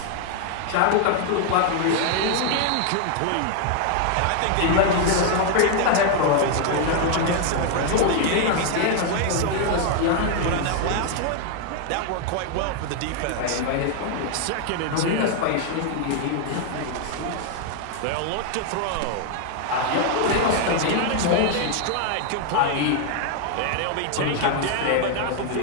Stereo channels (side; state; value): both; different; correlation 0.00